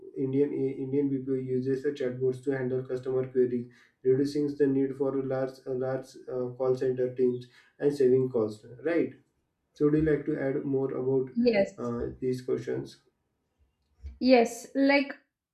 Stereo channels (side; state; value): both; identical; correlation 1.00